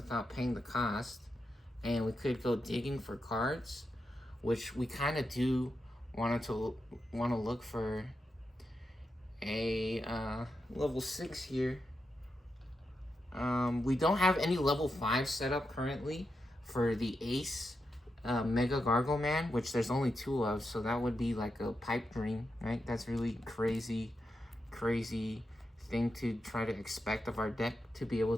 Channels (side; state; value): both; normal; correlation 0.86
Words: paying the cost. And we could go digging for cards, which we kind of do want to look for a level 6 here. We don't have any level 5 set up currently for the Ace Mega Gargo Man, which there's only 2 of, so that would be like a pipe dream, right? That's really crazy thing to try to expect of our deck to be able